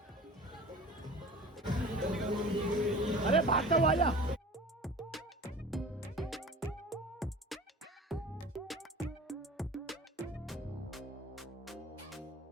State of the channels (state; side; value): normal; both; correlation 0.40